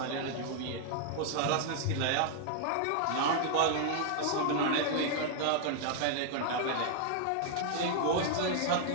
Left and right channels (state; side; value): different; both; correlation 0.00